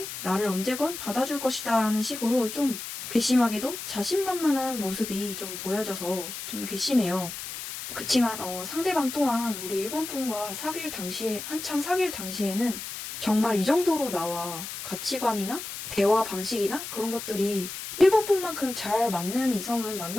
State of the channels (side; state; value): left; noise; hiss, 8 dB below the sound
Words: 나를 언제건 받아줄 것이다. 라는 식으로 좀 괘씸하게도 자신만만한 모습이 좀 보여져서 좀 괘씸해요. 그치만 상대방 또한 우리 1번 분과 한창 사귈 당시에는 정말 이 정도로 나와 가치관이나 대화 방식이나 그런 것들이 1번 분만큼 잘 맞는 이성은